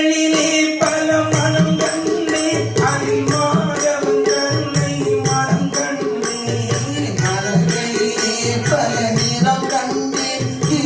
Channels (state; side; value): identical; both; correlation 1.00